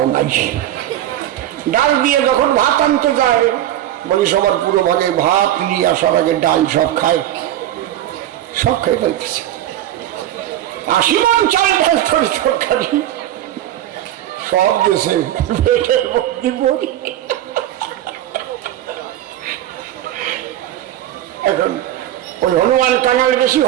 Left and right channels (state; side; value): quieter; left; 12.7 dB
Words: নাই। ডাল দিয়ে যখন ভাত আনতে যায়, বলি সবার পুরো ভাগে ভাত নিয়ে আসার আগে ডাল সব খায়, সব খেয়ে ফেলতেছে। 80 মন চাল ডাল তরি তরকারি সব দেশে পেটের মধ্যে পড়ি। এখন ওই হনুমান কাঙাল বেশি,